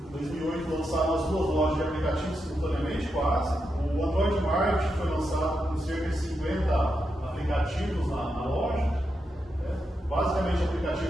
em 2008 lançaram as duas lojas de aplicativos simultaneamente, quase. O Android Market foi lançado com cerca de 50 aplicativos na loja, basicamente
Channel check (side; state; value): both; normal; correlation 0.85